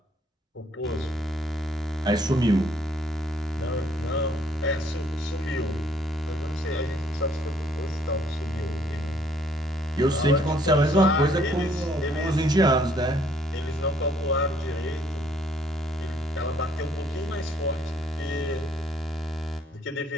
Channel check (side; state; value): both; normal; correlation 0.64